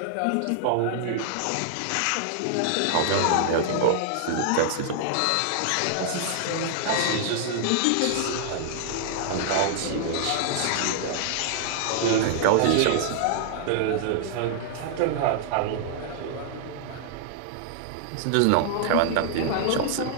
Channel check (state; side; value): different; both; correlation -0.01